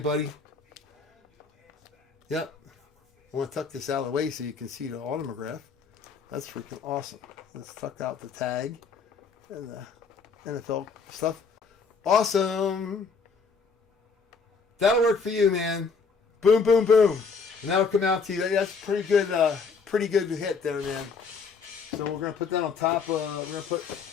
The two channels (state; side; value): quieter; right; 5.1 dB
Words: buddy. Yep. I want to tuck this out of the way so you can see the autograph. That's freaking awesome. Let's tuck out the tag and the NFL stuff. Awesome. That'll work for you, man. Boom, boom, boom. And that'll come out to you. That's pretty good hit there, man. So we're gonna put that on top. We're gonna